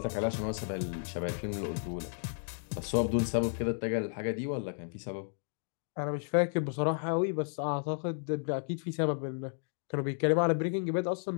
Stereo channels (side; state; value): right; silent; digital silence